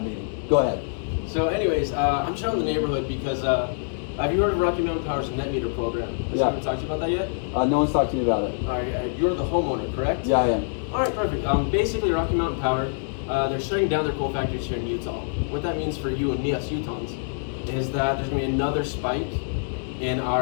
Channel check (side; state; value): right; silent; digital silence